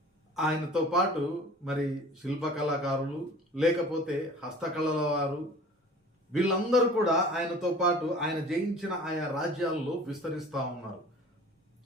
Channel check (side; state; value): both; normal; correlation 0.45